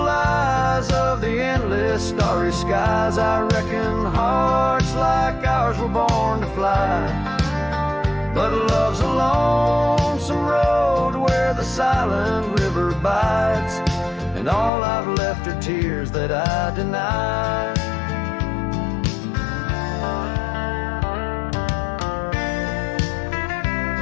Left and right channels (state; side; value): drops out; right; at 14.7 s